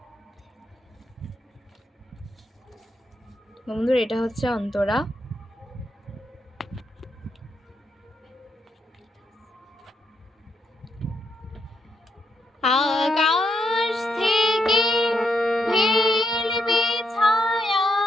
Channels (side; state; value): both; normal; correlation 0.79